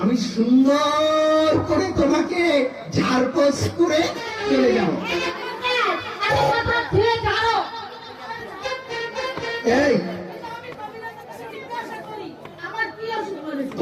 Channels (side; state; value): both; identical; correlation 1.00